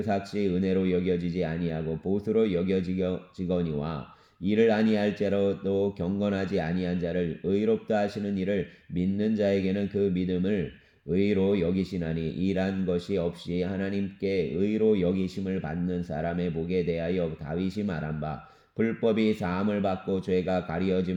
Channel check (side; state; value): both; identical; correlation 1.00